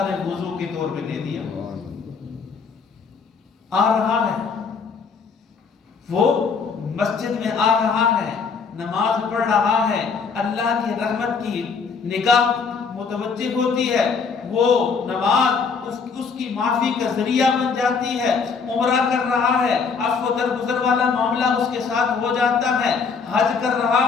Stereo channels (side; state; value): right; quieter; 5.4 dB